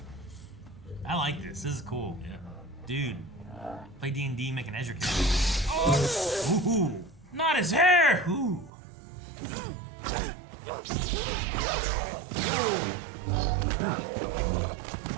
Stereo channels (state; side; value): drops out; left; at 8.7 s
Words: I like this. This is cool. Yeah. Dude, play D&D, make an Ezra character. Oh! Ooh! Not his hair! Ooh.